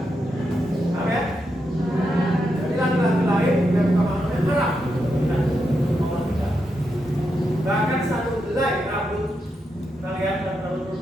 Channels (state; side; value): normal; both; correlation 0.84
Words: Paham ya? Jadi laki-laki lain yang bukan manusia haram. Nah, aurat kita. Bahkan satu helai rambut kalian dan rambut